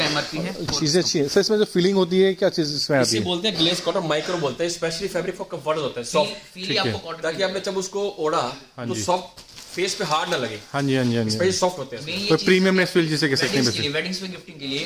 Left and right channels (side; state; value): both; identical; correlation 1.00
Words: एमआरपी है। चीज़ें अच्छी है सर। इसमें जो फीलिंग होती है क्या चीज़ इसमें आती इसे है? बोलते हैं ग्लेज कॉटन, माइक्रो बोलते हैं, स्पेशली फैब्रिक फॉर कंफर्ट होता है, सॉफ्ट, फील आपको कॉटन ताकि आपने जब उसको ओढ़ा तो जी। सॉफ्ट, फेस पे हार्ड ना लगे, हाँ जी हाँ जी हाँ जी। स्पेशली सॉफ्ट होते हैं। तो प्रीमियमनेस फील जिसे कह सकते हैं वेडिंग्स में गिफ्टिंग के